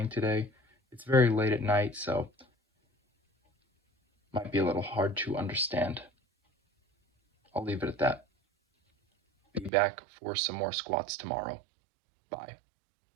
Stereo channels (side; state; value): left; drops out; at 9.7 s